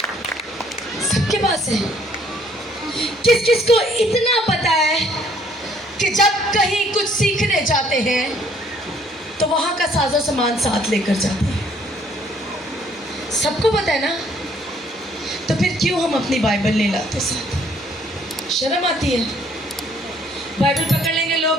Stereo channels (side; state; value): both; normal; correlation 0.63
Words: सबके पास है। किस किस को इतना पता है कि जब कहीं कुछ सीखने जाते हैं तो वहां का साजो सामान साथ लेकर जाते हैं? सबको पता है ना, तो फिर क्यों हम अपनी बाइबल नहीं लाते साथ? शर्म आती है। बाइबल पकड़ लेंगे,